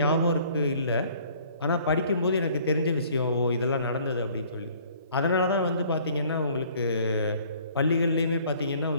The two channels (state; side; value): inverted; both; correlation -0.55